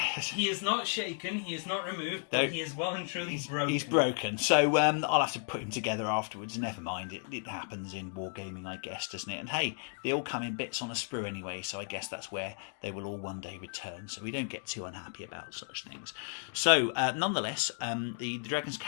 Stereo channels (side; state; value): right; silent; 55 dB below the other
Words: He is not shaken, he is not removed, but he is well and truly broken. He's broken. So I'll have to put him together afterwards. Never mind. It happens in wargaming, I guess, doesn't it? And hey, they all come in bits on a sprue anyway, so I guess that's where they will all one day return. So we don't get too unhappy about such things. So nonetheless, the dragons